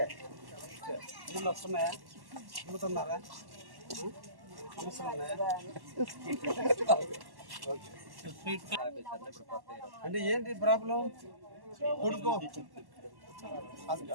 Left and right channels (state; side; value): late; left; 1.1 ms